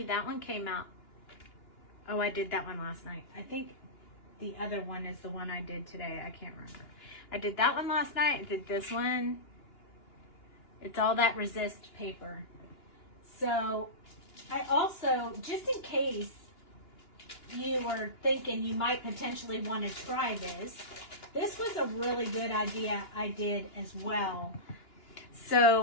that one came out. Oh, I did that one last night. I think the other one is the one I did today. I can't remember. I did that one last night. I did this one. It's all that resist paper. So I also, just in case you were thinking you might potentially want to try this was a really good idea I did as well.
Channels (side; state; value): right; late; 2.9 ms